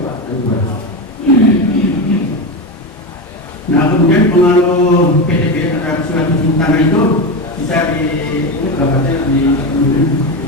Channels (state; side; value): normal; both; correlation 0.17